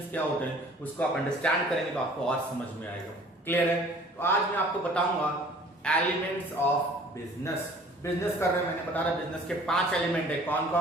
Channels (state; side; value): normal; both; correlation 0.51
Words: क्या होते हैं, उसको आप अंडरस्टैंड करेंगे तो आपको और समझ में आएगा। क्लियर है? तो आज मैं आपको बताऊंगा एलिमेंट्स ऑफ बिजनेस। बिजनेस कर रहे हैं, मैंने बता रहा बिजनेस के 5 एलिमेंट है। कौन